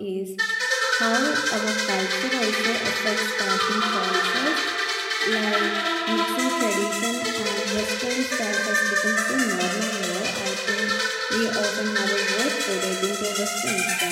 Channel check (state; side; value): identical; both; correlation 1.00